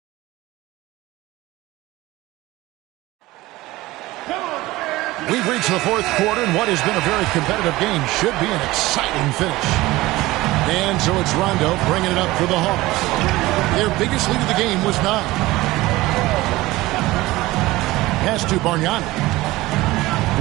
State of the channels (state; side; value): quieter; left; 18.9 dB